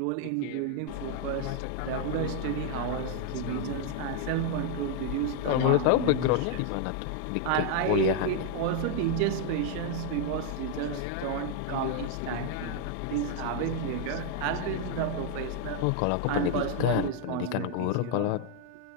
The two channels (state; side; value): different; both; correlation 0.00